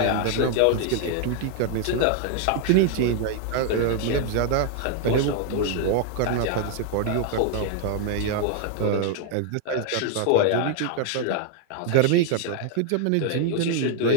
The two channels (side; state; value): both; different; correlation 0.00